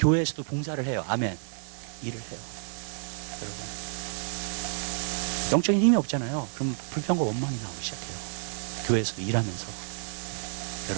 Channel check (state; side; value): silent; left; 58 dB below the other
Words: 봉사를 해요. 아멘? 일을 해요. 여러분. 영적인 힘이 없잖아요. 그럼 불평과 원망이 나오기 시작해요. 교회에서도 일하면서.